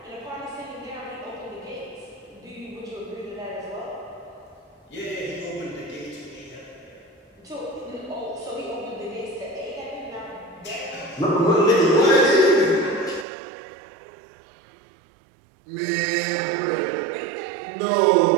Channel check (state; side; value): drops out; left; at 13.2 s